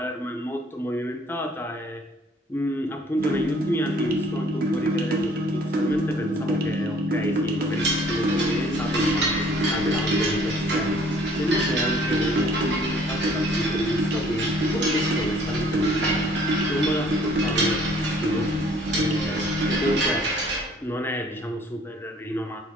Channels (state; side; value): normal; both; correlation 0.57